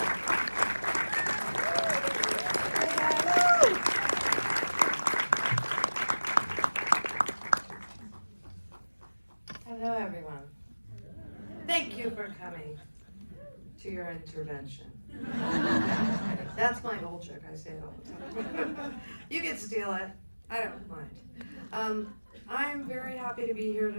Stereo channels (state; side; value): inverted; both; correlation -1.00